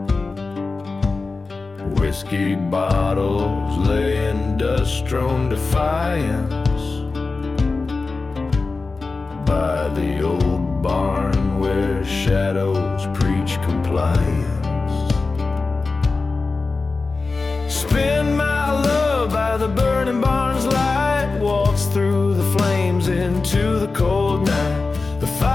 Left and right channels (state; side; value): quieter; right; 3.9 dB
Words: Whiskey bottles lay in dust-strewn defiance by the old barn where shadows preach compliance. Spin my love by the burning barn's light, waltz through the flames into the cold night. The